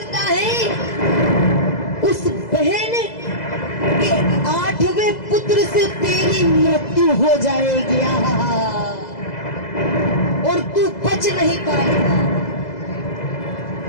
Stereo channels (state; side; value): late; right; 2.0 ms